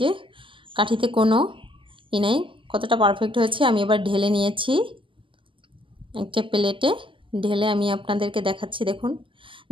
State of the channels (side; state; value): left; late; 0.25 ms